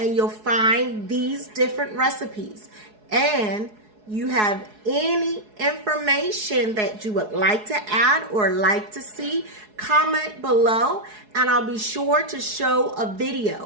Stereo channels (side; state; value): left; late; 4.7 ms